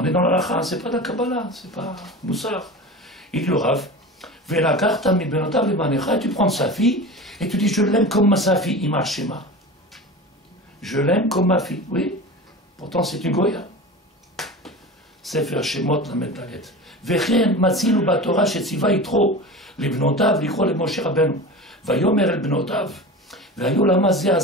est dans la lacha, c'est pas de la Kabbalah, c'est pas Moussar. Il dit le Rav, et tu prends sa fille et tu dis je l'aime comme sa fille, Ima Shema. Je l'aime comme ma fille, oui. Pourtant c'est une Goya. Sefer Shemot la Metalet. וכן מצינו בתורה שציווה יתרו לבנותיו לקרוא למשה רבנו ויאמר אל בנותיו והיו למה זה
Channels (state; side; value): normal; both; correlation 0.31